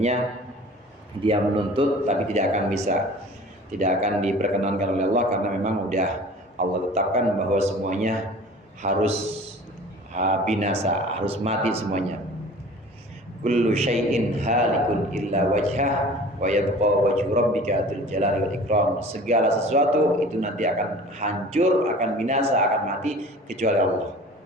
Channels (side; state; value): both; normal; correlation 0.43